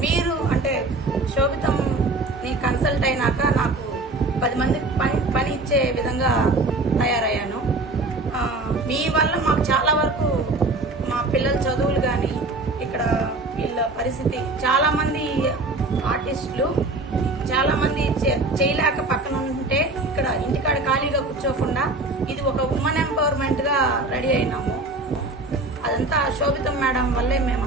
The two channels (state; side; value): quieter; left; 3.1 dB